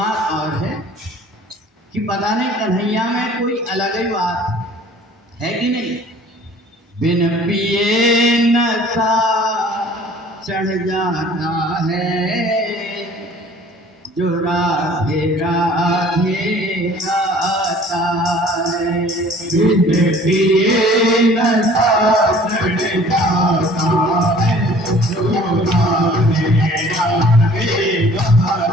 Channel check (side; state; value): both; normal; correlation 0.51